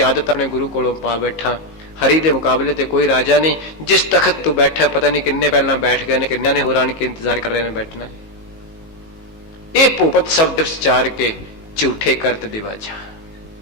आदत अपने गुरु कोलों पा बैठा। हरि दे मुकाबले ते कोई राजा नहीं। जिस तखत तू बैठा पता नहीं किन्ने पहला बैठ गए ने, किन्ने ने होर आन के इंतजार कर रहे ने बैठना। ये भूपत शब्द उच्चार के झूठे करत दिवाजा।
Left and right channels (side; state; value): right; late; 19 ms